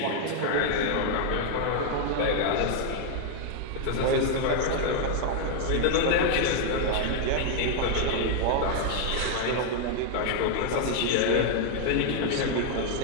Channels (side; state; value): both; different; correlation 0.00